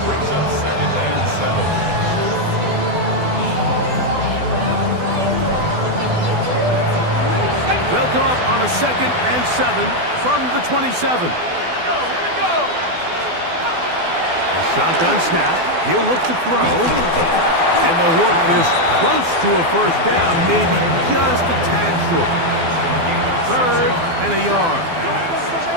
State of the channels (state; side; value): late; left; 12 ms